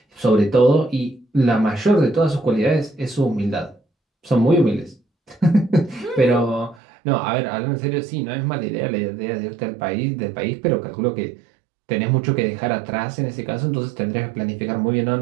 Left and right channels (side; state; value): left; drops out; at 6.8 s